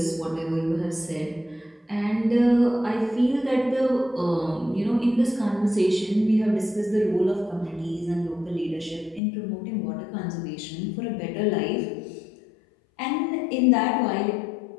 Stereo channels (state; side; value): drops out; right; at 9.2 s